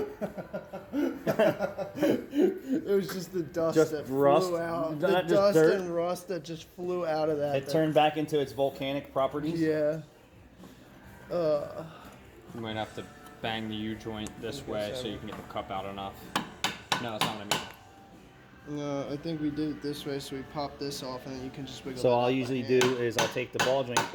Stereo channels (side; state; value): both; identical; correlation 1.00